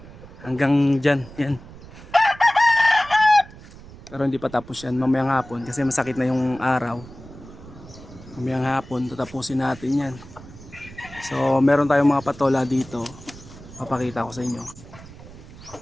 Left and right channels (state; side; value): noise; right; rumble, 18 dB below the sound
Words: Hanggang dyan, yan. Pero hindi pa tapos yan, mamayang hapon kasi masakit na yung araw. Mamayang hapon, tatapusin natin yan. So meron tayong mga patola dito. Papakita ko sa inyo.